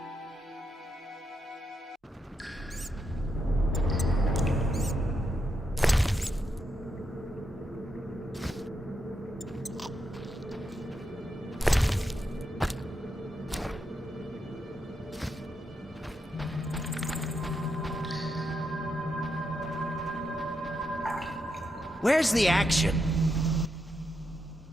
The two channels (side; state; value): both; normal; correlation 0.83